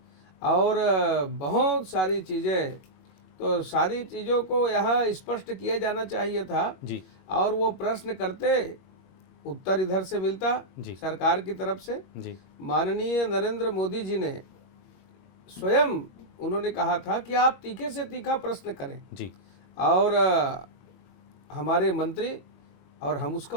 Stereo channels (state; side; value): late; right; 21 ms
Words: और बहुत सारी चीज़ें। तो सारी चीज़ों को यहाँ स्पष्ट किया जाना चाहिए था जी, और वो प्रश्न करते उत्तर इधर से मिलता जी, सरकार की तरफ से। जी, माननीय नरेंद्र मोदी जी ने स्वयं उन्होंने कहा था कि आप तीखे से तीखा प्रश्न करें जी, और हमारे मंत्री और हम उसका